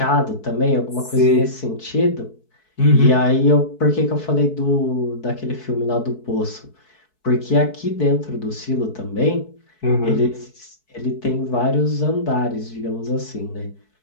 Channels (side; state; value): right; late; 4.6 ms